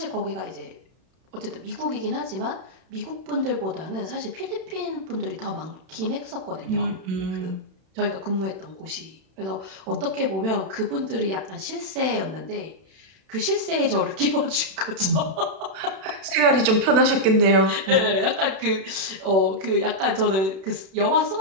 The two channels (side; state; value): left; late; 31 ms